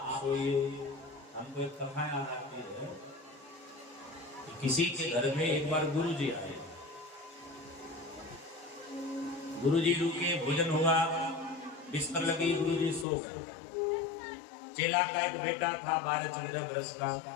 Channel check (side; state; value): right; drops out; at 13.1 s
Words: सोइए। हमको एक कथा याद आती है, किसी के घर में एक बार गुरु जी आए, गुरु जी रुके, भोजन हुआ, बिस्तर लगी, गुरु जी सो गए। चेला का एक बेटा था 12-14 वर्ष का,